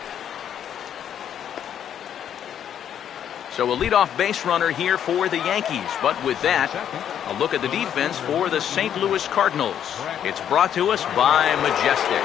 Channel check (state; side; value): quieter; right; 9.4 dB